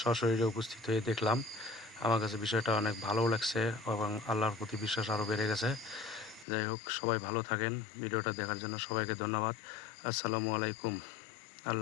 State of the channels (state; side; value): drops out; right; at 6.5 s